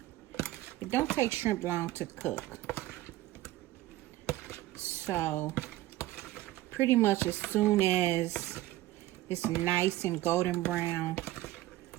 It don't take shrimp long to cook. So pretty much as soon as it's nice and golden brown,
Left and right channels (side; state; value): left; quieter; 16.3 dB